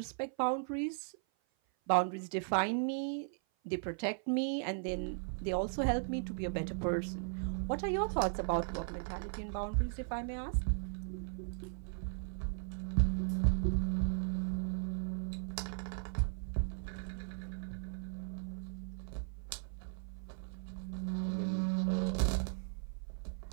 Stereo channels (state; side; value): silent; left; 53 dB below the other